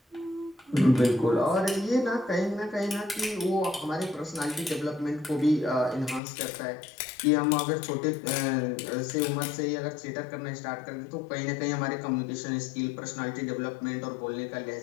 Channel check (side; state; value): right; drops out; at 6.2 s